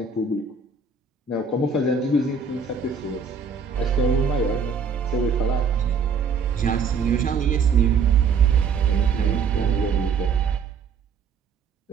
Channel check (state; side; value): quieter; left; 5.6 dB